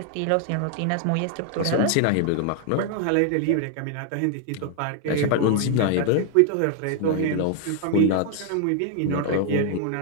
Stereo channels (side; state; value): both; different; correlation 0.00